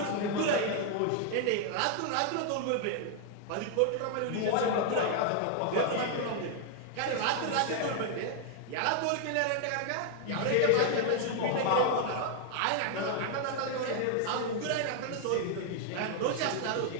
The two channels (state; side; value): different; both; correlation 0.00